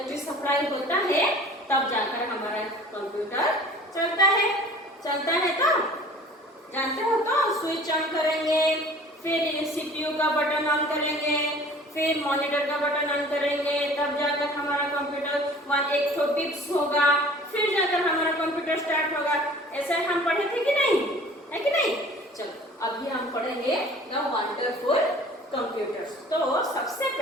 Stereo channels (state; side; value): normal; both; correlation 0.47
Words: सप्लाई होता है तब जाकर हमारा कंप्यूटर चलता है। तो जानते हो, तो स्विच ऑन करेंगे, फिर सीपीयू का बटन ऑन करेंगे, फिर मॉनिटर का बटन ऑन करेंगे, तब जाकर हमारा कंप्यूटर 1 बिप्स होगा, फिर जाकर हमारा कंप्यूटर स्टार्ट होगा। ऐसा हम पढ़े थे कि नहीं? है कि नहीं? चलो अभी हम पढ़ेंगे द वंडरफुल कंप्यूटर्स। तो सबसे